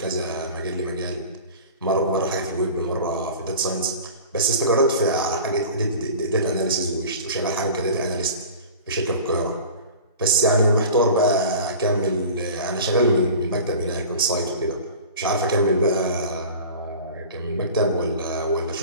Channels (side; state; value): both; inverted; correlation -0.39